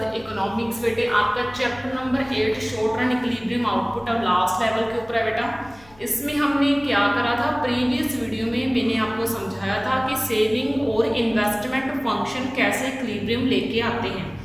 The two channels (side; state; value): left; noise; hum, 26 dB below the sound